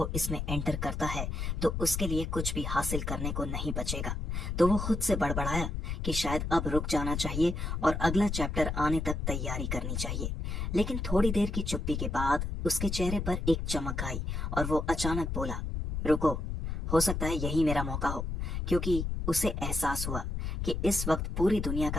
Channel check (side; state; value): left; noise; rumble, 3 dB below the sound